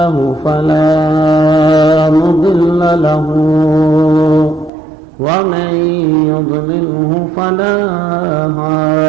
فلا مضل له ومن يضلله فلا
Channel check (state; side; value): drops out; left; at 4.7 s